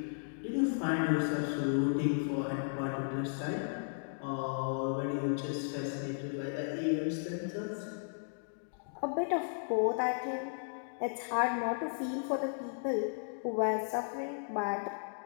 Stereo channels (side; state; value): right; silent; digital silence